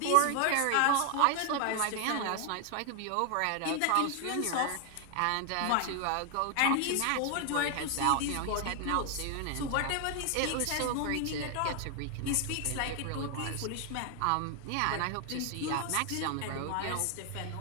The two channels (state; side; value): different; both; correlation 0.00